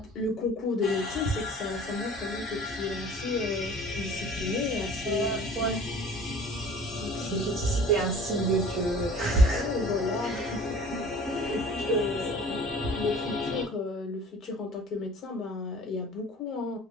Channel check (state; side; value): normal; both; correlation 0.46